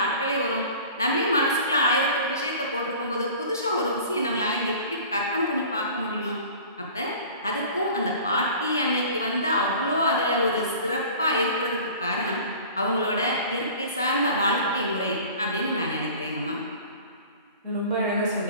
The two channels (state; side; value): inverted; both; correlation -0.43